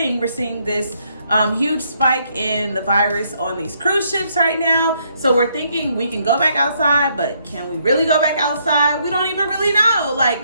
We're seeing this huge spike in the virus on these cruise ships right now. So we're thinking we can go back outside, but can we really go back outside? We don't even really know.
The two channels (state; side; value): inverted; both; correlation -0.71